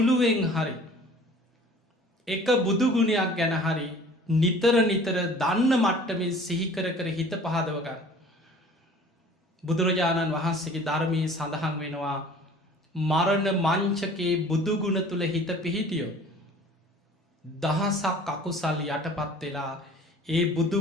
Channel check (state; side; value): normal; both; correlation 0.48